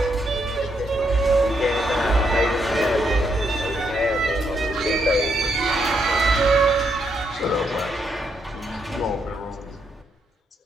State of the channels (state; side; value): normal; both; correlation 0.77